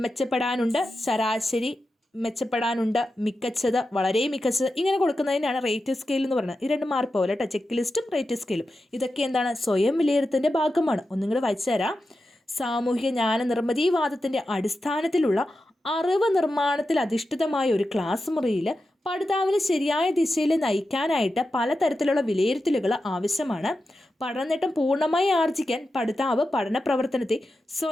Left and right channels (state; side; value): normal; both; correlation 0.91